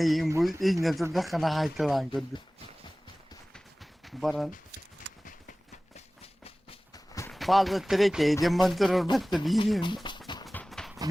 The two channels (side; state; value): both; normal; correlation 0.98